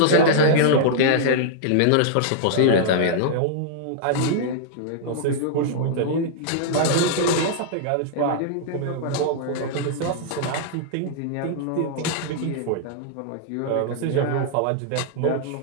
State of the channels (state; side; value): different; both; correlation -0.01